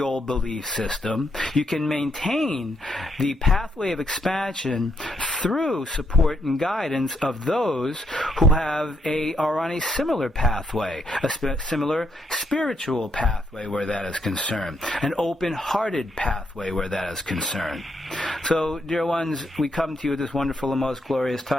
old belief system. You can maintain the pathway of expansion through support and guidance of those who are on a similar pathway, a similar spiritual pathway where that is concerned, an open-hearted pathway where that is concerned. So, dear ones, we come to you at this wonderful and most glorious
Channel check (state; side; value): normal; both; correlation 0.77